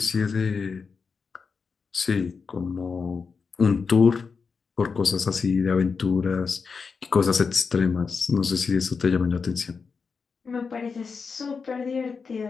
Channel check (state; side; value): quieter; right; 5.2 dB